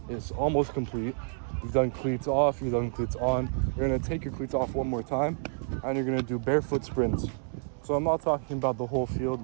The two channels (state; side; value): silent; left; digital silence